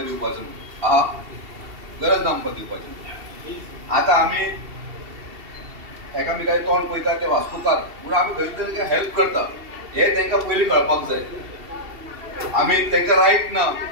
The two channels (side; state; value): left; late; 2.7 ms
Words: दिवपाचो आहा गरज ना आमकां दिवपाची. आतां आमी एकामेकाचें तोंड पळयता ते वास्तूकार पूण आमी खंय तरी हेल्प करता हे तांकां पयलीं कळपाक जाय. आमी तांकां रायट ना